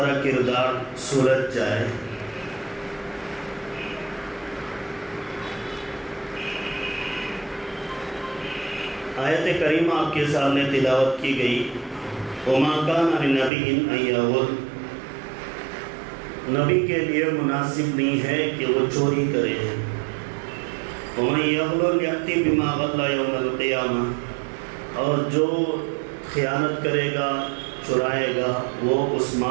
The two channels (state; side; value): drops out; left; at 13.5 s